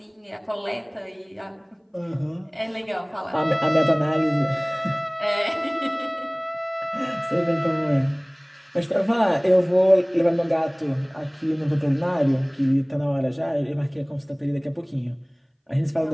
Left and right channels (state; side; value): identical; both; correlation 1.00